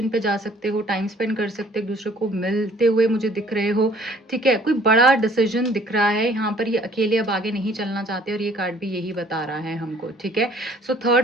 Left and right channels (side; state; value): both; normal; correlation 0.57